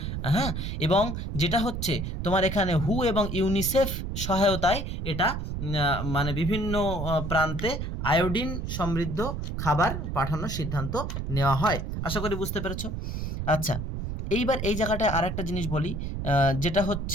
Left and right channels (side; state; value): right; noise; rumble, 4 dB below the sound